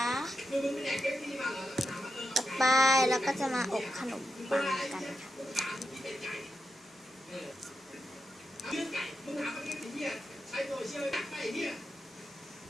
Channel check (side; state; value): both; normal; correlation 0.87